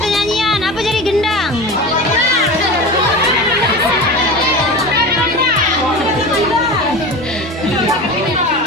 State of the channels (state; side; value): normal; both; correlation 0.30